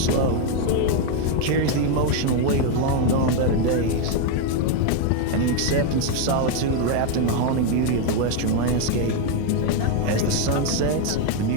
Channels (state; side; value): different; both; correlation 0.01